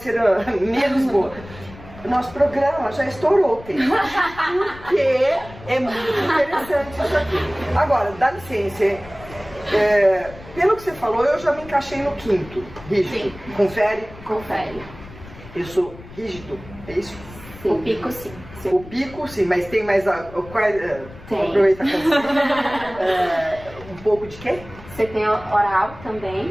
a menos boa. O nosso programa já estourou o tempo. Porque é muito interessante isso aqui. Agora, dá licença. Pelo que você falou, eu já me encaixei no quinto. Rígido. Sim. Confere? Confere. Eu sou rígido, é isso? Sim. O pico, sim. O pico, sim, mas tem mais... Tem. Aproveita um pouco de quê? Você tem oral também,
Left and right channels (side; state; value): left; noise; rumble, 18 dB below the sound